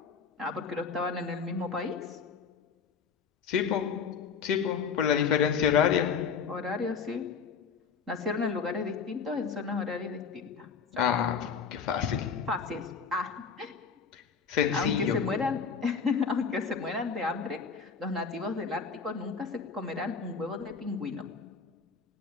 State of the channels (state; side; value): quieter; right; 6.0 dB